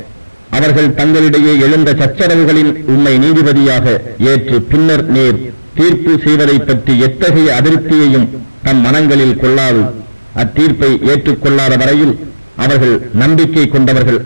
அவர்கள் தங்களிடையே எழுந்த சச்சரவுகளின் உண்மை நீதிபதியாக ஏற்று பின்னர் நேர் தீர்ப்பு செய்வதை பற்றி எத்தகைய அதிருப்தியையும் தம் மனங்களில் கொள்ளாது அத்தீர்ப்பை ஏற்றுக்கொள்ளாத வரையில் அவர்கள் நம்பிக்கை கொண்டவர்கள்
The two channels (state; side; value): inverted; both; correlation -1.00